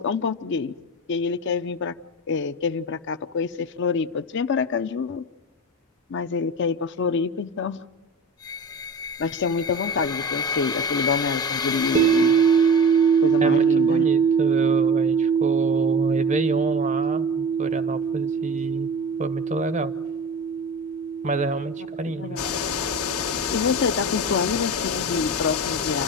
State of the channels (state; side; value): normal; both; correlation 0.31